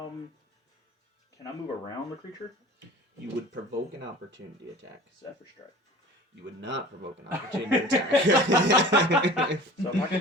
I move around the creature? You would provoke an opportunity attack. Zephyr Strike. You would not provoke an opportunity attack. So if I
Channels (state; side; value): normal; both; correlation 0.43